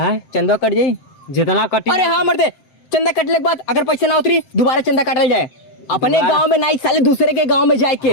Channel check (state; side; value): late; right; 7.6 ms